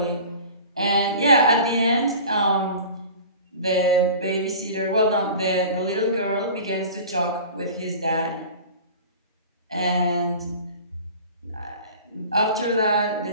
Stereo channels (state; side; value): inverted; both; correlation -0.40